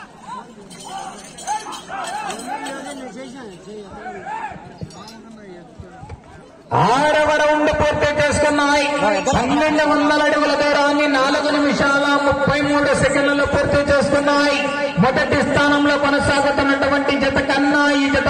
ఆరవ రౌండ్ పూర్తి చేసుకున్నాయి. 1200 అడుగుల దూరాన్ని 4 నిమిషాల 33 సెకండ్లలో పూర్తి చేసుకున్నాయి. మొదటి స్థానంలో కొనసాగుతున్నటువంటి జత కన్నా ఈ జత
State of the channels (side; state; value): both; identical; correlation 1.00